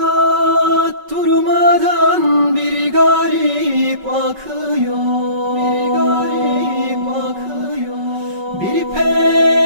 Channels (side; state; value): left; late; 5.3 ms